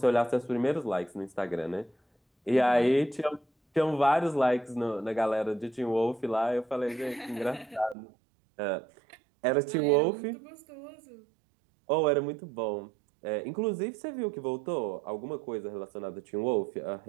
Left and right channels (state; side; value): drops out; left; at 8.0 s